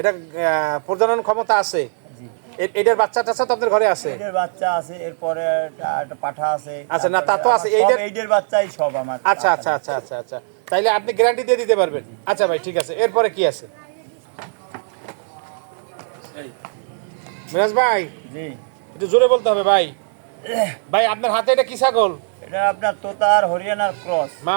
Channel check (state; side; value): silent; left; digital silence